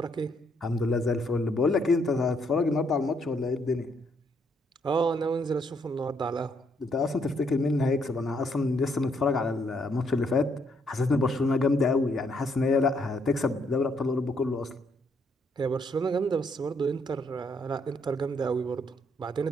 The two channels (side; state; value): both; normal; correlation 0.72